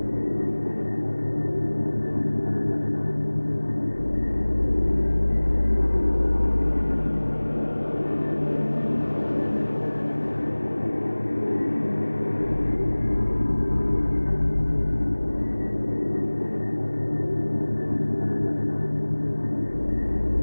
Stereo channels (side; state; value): both; inverted; correlation -1.00